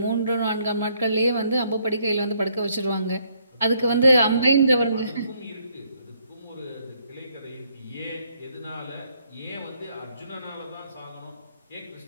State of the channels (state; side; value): inverted; both; correlation -0.70